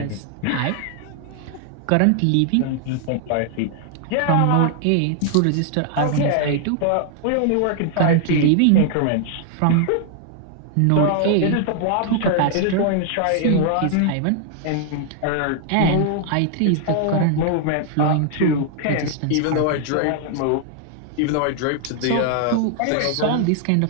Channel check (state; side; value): different; both; correlation 0.00